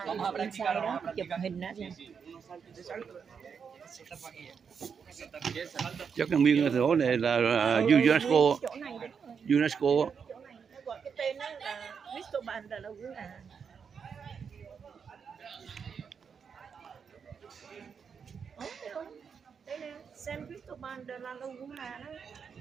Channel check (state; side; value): quieter; left; 6.5 dB